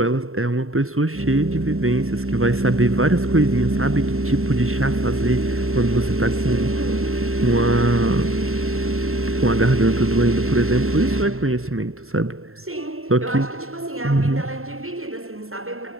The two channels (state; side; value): late; left; 0.62 ms